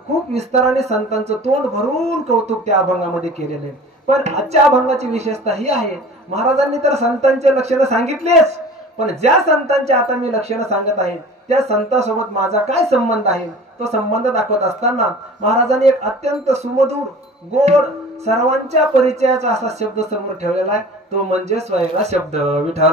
खूप विस्ताराने संतांचं तोंड भरून कौतुक त्या अभंगामध्ये केलेले। पण आजच्या अभंगाची विशेषता ही आहे, महाराजांनी तर संतांचे लक्षण सांगितलेच, पण ज्या संतांचे आता मी लक्षण सांगत आहे त्या संतांसोबत माझा काय संबंध आहे तो संबंध दाखवत असताना महाराजांनी एक अत्यंत सुमधुर गोड सर्वांच्या परिचयाचा असा शब्द समोर ठेवलेला आहे, तो म्हणजे स्वैरा शब्द।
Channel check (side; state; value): both; normal; correlation 0.42